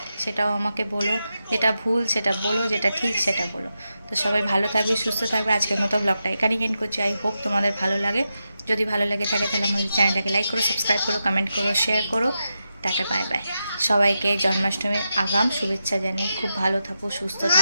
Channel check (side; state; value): both; inverted; correlation -0.88